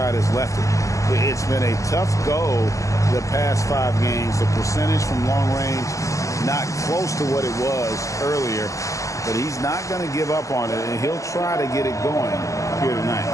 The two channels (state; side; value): late; right; 0.15 ms